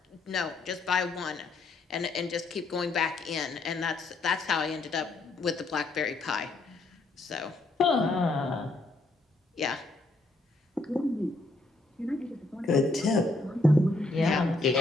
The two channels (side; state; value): right; quieter; 3.2 dB